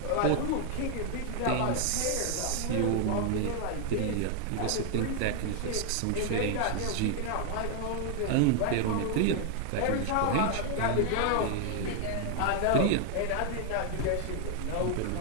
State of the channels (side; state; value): both; different; correlation 0.00